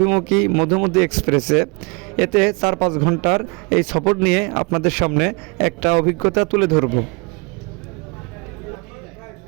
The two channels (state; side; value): quieter; left; 29.9 dB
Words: মধুমতি এক্সপ্রেসে। এতে 4-5 ঘন্টার এই সফর নিয়ে আপনাদের সামনে একটা অভিজ্ঞতা তুলে ধরব।